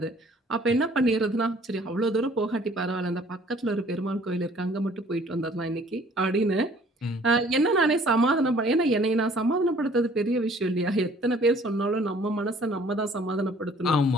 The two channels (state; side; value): normal; both; correlation 0.56